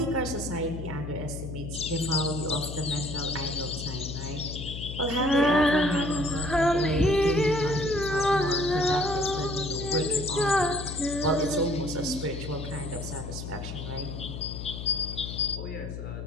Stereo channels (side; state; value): left; noise; hum, 7 dB below the sound